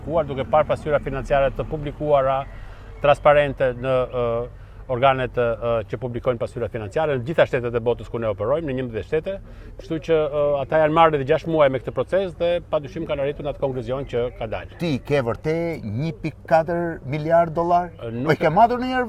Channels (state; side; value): identical; both; correlation 1.00